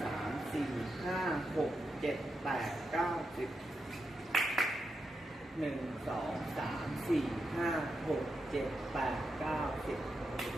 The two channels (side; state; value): both; normal; correlation 0.85